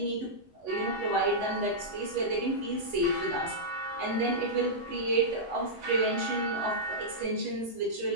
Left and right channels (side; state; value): both; normal; correlation -0.11